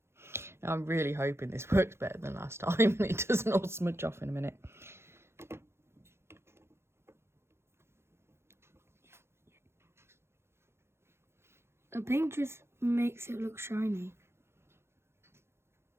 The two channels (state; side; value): late; left; 0.12 ms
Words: I'm really hoping this works better than last time and it doesn't all smudge off in a minute. The pink just makes it look shiny.